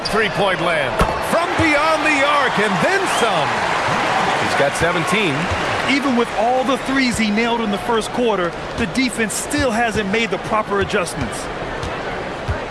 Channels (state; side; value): identical; both; correlation 1.00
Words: 3-point land, from beyond the arc, and then some. He's got 17. Even with all the threes he nailed in the first quarter, the defense still hasn't made the proper adjustments.